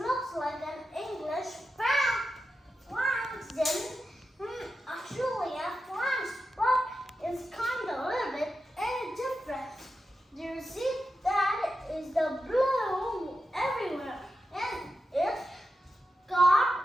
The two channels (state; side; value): normal; both; correlation 0.90